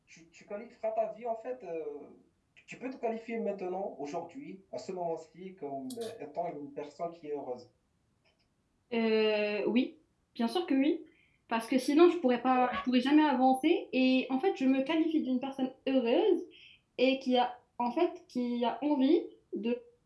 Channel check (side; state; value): both; identical; correlation 1.00